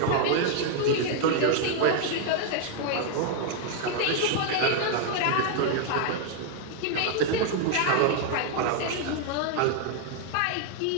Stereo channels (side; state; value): both; different; correlation 0.00